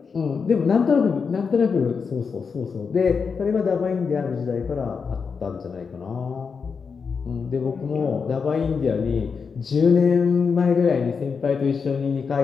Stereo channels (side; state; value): right; quieter; 5.6 dB